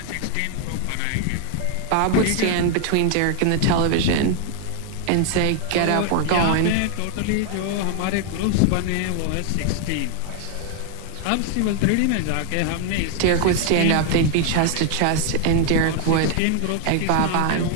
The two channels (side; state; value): both; different; correlation 0.00